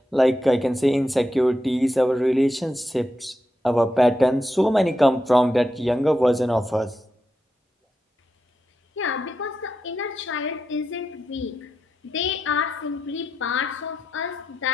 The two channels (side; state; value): both; normal; correlation 0.86